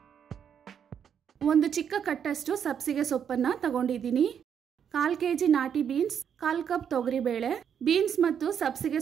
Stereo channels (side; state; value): left; quieter; 8.1 dB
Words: ಒಂದು ಚಿಕ್ಕ ಕಟ್ಟಷ್ಟು ಸಬ್ಸಿಗೆ ಸೊಪ್ಪನ್ನು ತಗೊಂಡಿದ್ದೀನಿ. 1/4 kg ನಾಟಿ ಬೀನ್ಸ್, 1/4 ಕಪ್ ತೊಗರಿ ಬೇಳೆ. ಬೀನ್ಸ್ ಮತ್ತು ಸಬ್ಸಿಗೆ